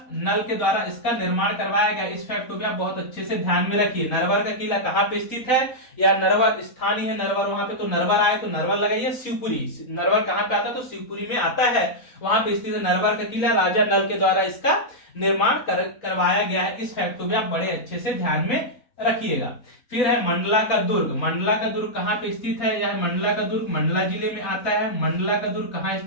नल के द्वारा इसका निर्माण करवाया गया। इस फैक्ट को भी आप बहुत अच्छे से ध्यान में रखिए। नरवर का किला कहां पे स्थित है, या नरवर स्थान ही है नरवर, वहां पे तो नरवर आए तो नरवर लगाइए। शिवपुरी, नरवर कहां पे आता है, तो शिवपुरी में आता है, वहां पे स्थित है नरवर का किला। राजा नल के द्वारा इसका निर्माण करवाया गया है। इस फैक्ट को भी आप बड़े अच्छे से ध्यान में रखिएगा। फिर है मंडला का दुर्ग। मंडला का दुर्ग कहां पे स्थित है, यह मंडला का दुर्ग मंडला जिले में आता है। मंडला का दुर्ग कहां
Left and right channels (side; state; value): right; late; 4.0 ms